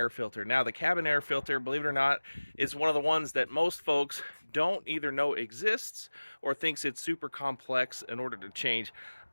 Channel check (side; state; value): both; inverted; correlation -1.00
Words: filter. Now the cabin air filter, believe it or not, is one of the ones that most folks don't either know exists or thinks it's super complex in order to change.